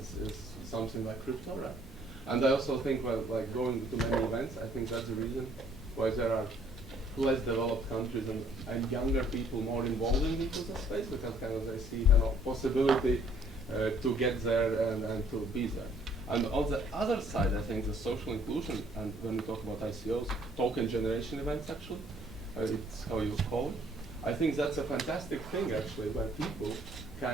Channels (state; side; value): normal; both; correlation 0.62